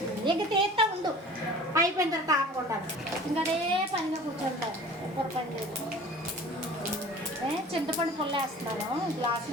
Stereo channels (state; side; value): normal; both; correlation 0.43